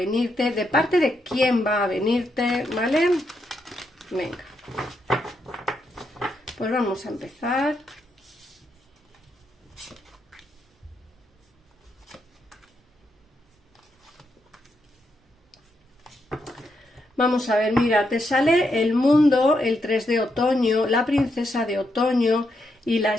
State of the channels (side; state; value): both; normal; correlation 0.81